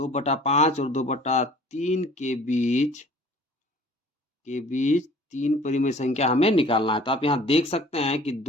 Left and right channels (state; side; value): normal; both; correlation 0.49